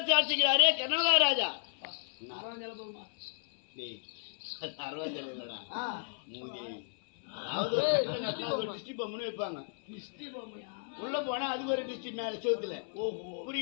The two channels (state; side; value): silent; right; 55 dB below the other